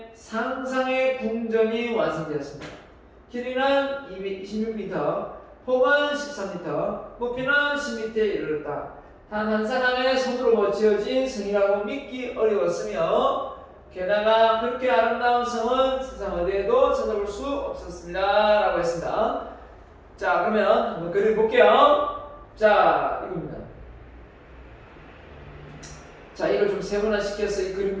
상상의 궁전이 완성되었습니다. 길이는 226m, 폭은 13m, 높이는 10m에 이르렀다. 단 한 사람의 손으로 지어진 성이라고 믿기 어려웠으며 게다가 그렇게 아름다운 성은 세상 어디에도 찾아볼 수 없었습니다. 라고 했습니다. 자 그러면 한번 그림 볼게요. 자 이겁니다. 자 이걸 좀 세분화시켜서 이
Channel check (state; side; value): identical; both; correlation 1.00